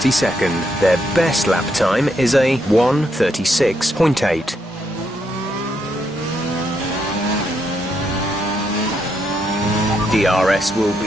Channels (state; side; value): normal; both; correlation 0.78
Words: Their best lap time is a 1:36.8. DRS will